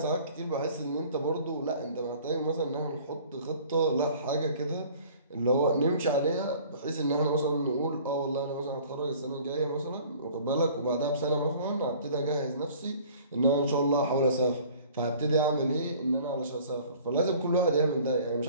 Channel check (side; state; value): both; inverted; correlation -0.50